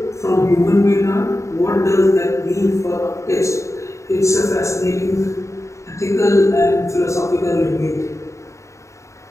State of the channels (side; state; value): right; late; 0.14 ms